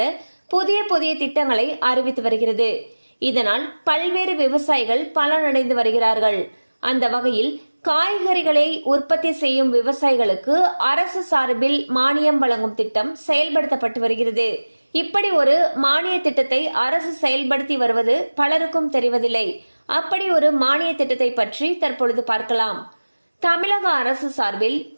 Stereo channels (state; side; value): inverted; both; correlation -1.00